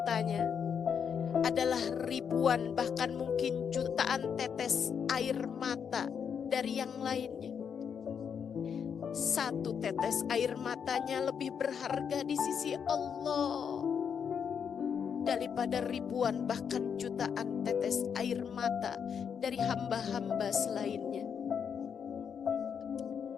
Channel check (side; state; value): right; quieter; 7.2 dB